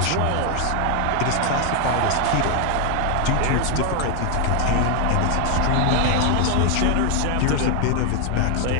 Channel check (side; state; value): both; different; correlation 0.01